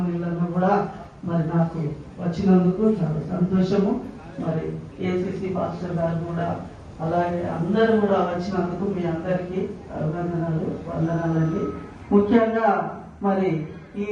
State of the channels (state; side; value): identical; both; correlation 1.00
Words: కూడా మరి నాకు వచ్చినందుకు చాలా సంతోషము. మరి ఏసీసీ పాస్టర్ గారు కూడా అలాగే అందరూ కూడా వచ్చినందుకు మీ అందరికీ అభినందనలు, వందనాలండి. ముఖ్యంగా మరి ఈ